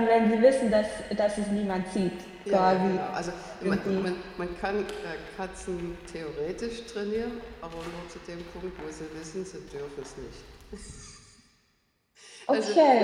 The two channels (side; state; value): both; identical; correlation 1.00